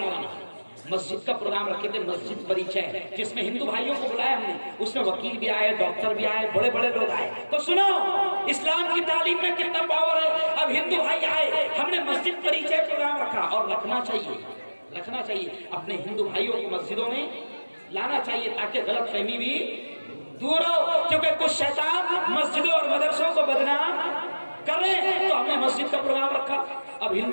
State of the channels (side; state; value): both; inverted; correlation -1.00